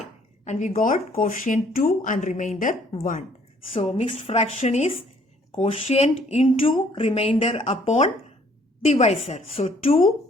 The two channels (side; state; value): both; normal; correlation 0.62